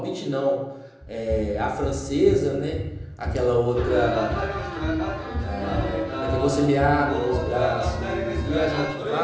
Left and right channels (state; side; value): identical; both; correlation 1.00